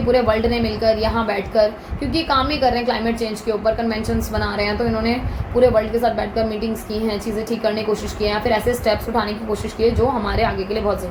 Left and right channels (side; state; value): both; identical; correlation 1.00